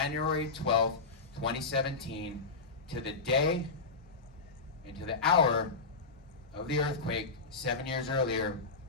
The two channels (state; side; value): quieter; right; 4.1 dB